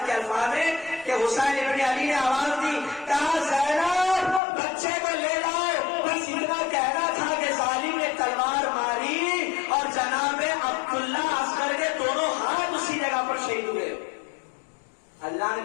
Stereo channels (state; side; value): drops out; right; at 4.4 s